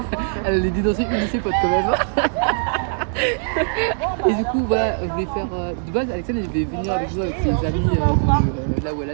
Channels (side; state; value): left; silent; digital silence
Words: Elle allait dénoncer une de ses potes quand même. Et du coup, voilà, je voulais faire. De base, Alexandre elle devait venir avec nous, avec ses amis de là où elle